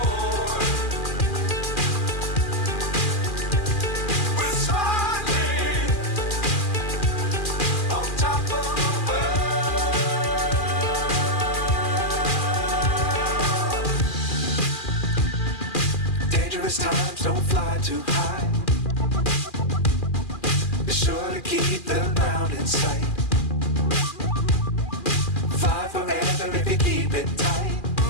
Times don't fly too high. Be sure to keep the ground in sight. Fly forever if you keep it tight.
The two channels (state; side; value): late; right; 2.4 ms